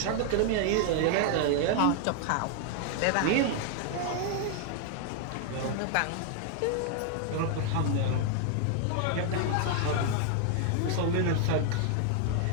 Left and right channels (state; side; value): different; both; correlation 0.00